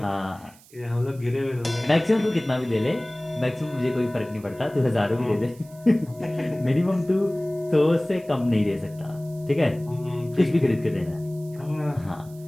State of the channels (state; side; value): noise; right; hiss, 25 dB below the sound